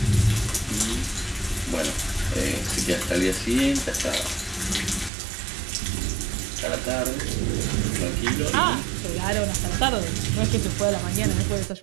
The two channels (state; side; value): drops out; left; at 5.1 s